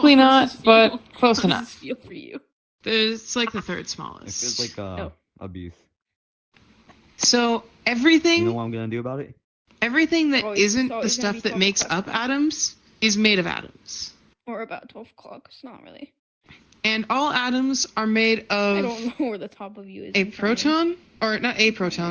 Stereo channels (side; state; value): both; identical; correlation 1.00